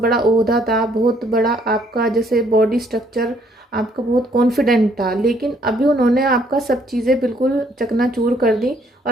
ओहदा था, बहुत बड़ा आपका जैसे बॉडी स्ट्रक्चर आपका बहुत कॉन्फिडेंट था, लेकिन अभी उन्होंने आपका सब चीज़ें बिल्कुल चकनाचूर कर दी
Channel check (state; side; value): normal; both; correlation 0.66